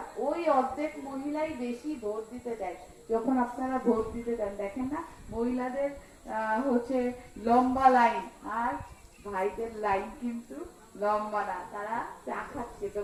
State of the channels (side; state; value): both; identical; correlation 1.00